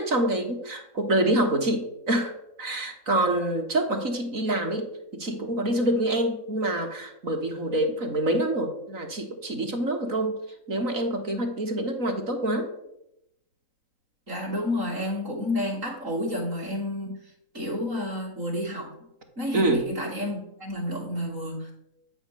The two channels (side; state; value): left; late; 3.9 ms